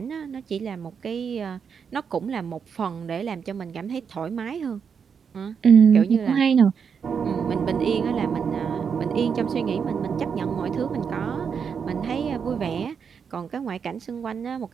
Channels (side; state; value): left; quieter; 6.6 dB